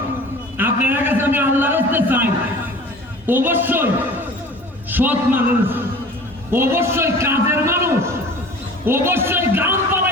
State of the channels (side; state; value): both; normal; correlation 0.42